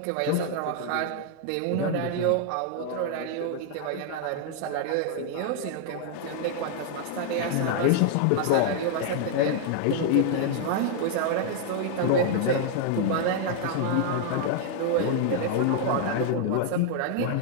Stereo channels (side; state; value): both; different; correlation 0.00